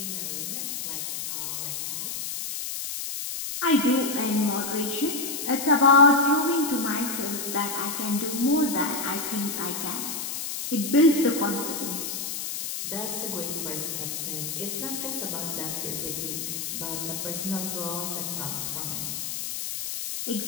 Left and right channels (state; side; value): noise; left; hiss, 4 dB below the sound